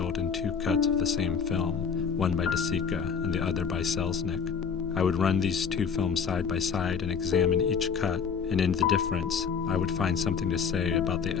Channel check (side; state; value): right; quieter; 6.3 dB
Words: in two cuts of the same film, one by De Sica and the other by Selznick. I would run these two films side by side and examine each cut, and in the difference, I would find something to say about the